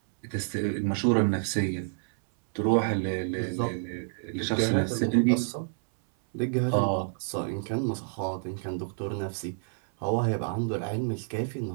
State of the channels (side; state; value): left; silent; 59 dB below the other